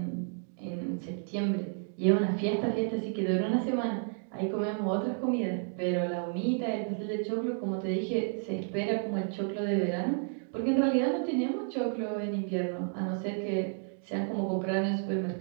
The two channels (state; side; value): silent; left; 57 dB below the other